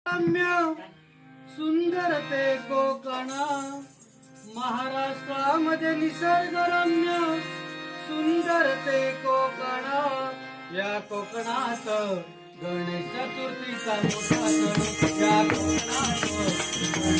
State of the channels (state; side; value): identical; both; correlation 1.00